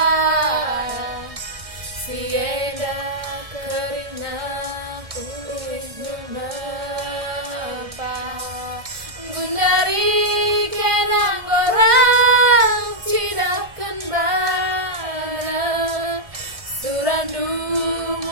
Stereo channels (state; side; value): late; left; 1.5 ms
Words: Sienda kerina kulit menapa Gundari kenang orang tidak kembali Surandu